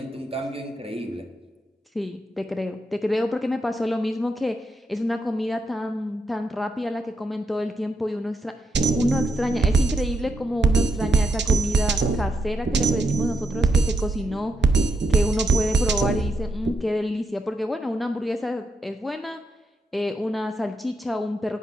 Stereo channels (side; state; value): both; normal; correlation 0.81